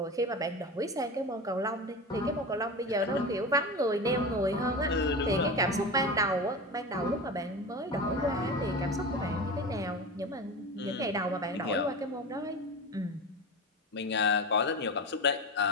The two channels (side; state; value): both; normal; correlation 0.26